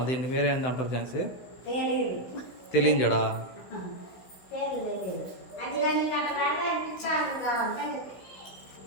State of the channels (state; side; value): late; right; 16 ms